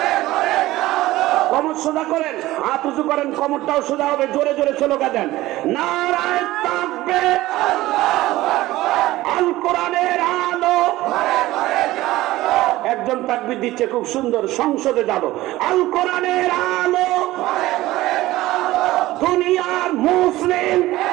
কমর সোজা করেন, হাত উঁচু করেন, কমরটাও সোজা হবে, জোরে জোরে স্লোগান দেন, নারায়ে তাকবীর, আল কোরআনের আলো। একজন তাকবীর দিচ্ছে, খুব সুন্দর, সংসদে যাব, আল কোরআনের আলো, দুনিয়ার মুসলিম,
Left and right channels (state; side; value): quieter; left; 17.0 dB